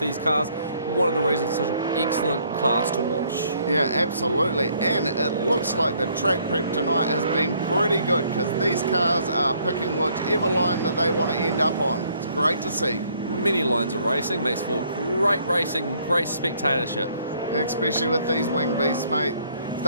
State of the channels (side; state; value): both; inverted; correlation -0.65